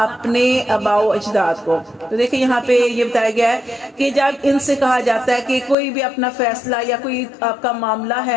اپنے آباء و اجداد کو۔ تو دیکھیں یہاں پہ یہ بتایا گیا ہے کہ جب ان سے کہا جاتا ہے کہ کوئی بھی اپنا فیصلہ یا کوئی آپ کا معاملہ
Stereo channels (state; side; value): drops out; right; at 5.8 s